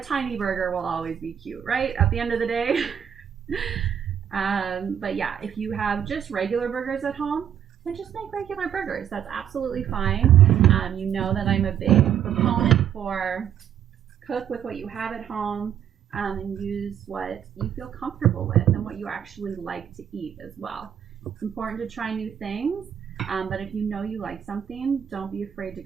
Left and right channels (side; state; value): left; quieter; 9.2 dB